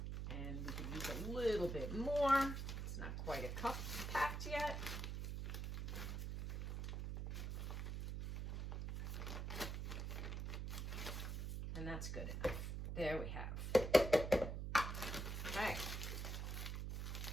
And we could use a little bit more. It's not quite a cup packed yet. And that's good enough. There we have. Okay.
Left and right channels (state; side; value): noise; right; hum, 3 dB below the sound